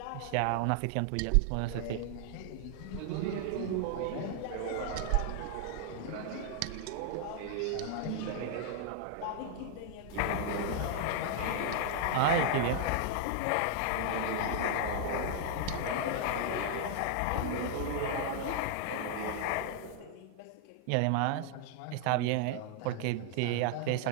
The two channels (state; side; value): different; both; correlation 0.00